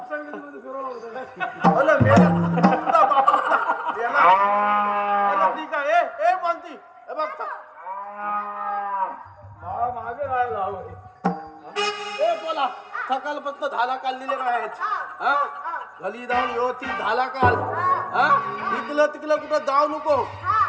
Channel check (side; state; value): both; identical; correlation 1.00